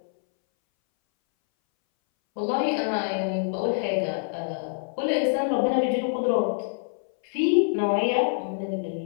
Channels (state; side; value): silent; right; 61 dB below the other